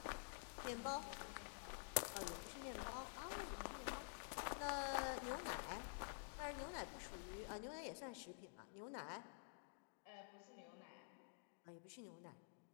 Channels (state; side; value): silent; right; digital silence